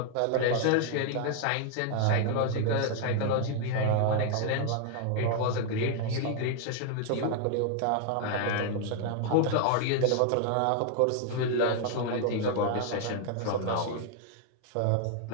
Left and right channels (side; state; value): both; different; correlation 0.00